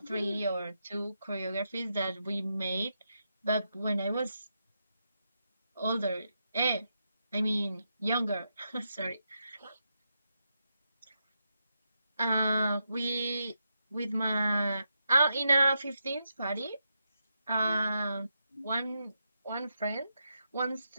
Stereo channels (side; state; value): both; inverted; correlation -0.85